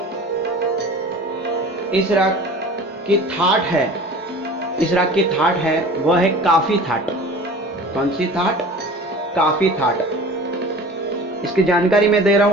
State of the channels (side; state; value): both; normal; correlation 0.41